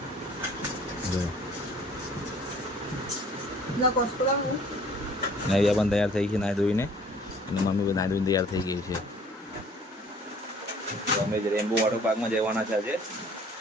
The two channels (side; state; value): both; normal; correlation 0.54